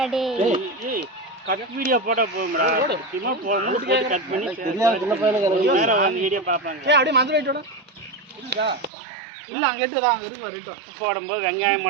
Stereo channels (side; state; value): left; drops out; at 8.9 s